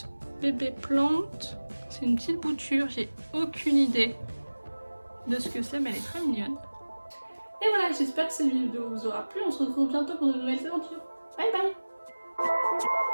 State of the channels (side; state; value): both; inverted; correlation -1.00